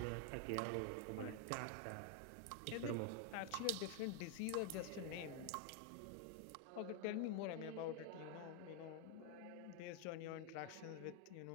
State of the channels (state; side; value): different; both; correlation 0.01